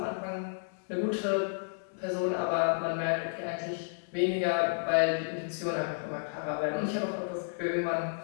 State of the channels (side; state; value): right; silent; digital silence